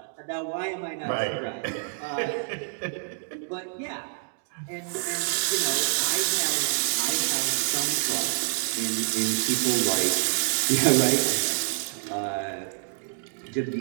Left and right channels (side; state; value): left; silent; digital silence